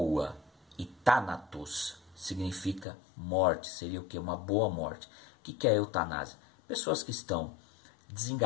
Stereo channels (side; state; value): right; drops out; at 2.9 s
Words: e thanatos significa morte, seria o que? Uma boa morte. O que é a eutanásia? Pessoas que estão